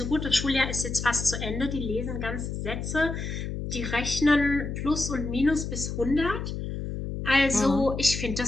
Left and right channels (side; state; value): left; noise; hum, 5 dB below the sound